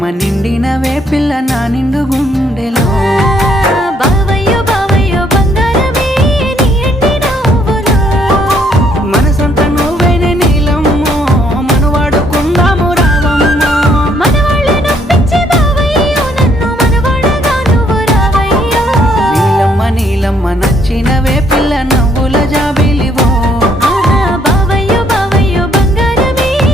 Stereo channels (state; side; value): normal; both; correlation 0.68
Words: నిండినవే పిల్ల నా నిండు గుండెలో బావయ్యో బావయ్యో బంగారమే నీ ఎండి నవ్వులో మనసంతా నువ్వేనే నీలమ్మో మనవాడుకుందాము రావమ్మో మనవాళ్ళే నొప్పించే బావయ్యో నన్ను మనవాడగా నువ్వు రావయ్యో నీలమ్మ నీలమ్మ నచ్చినవే పిల్ల నవ్వుల జాబిలివో బావయ్యో బావయ్యో బంగారమే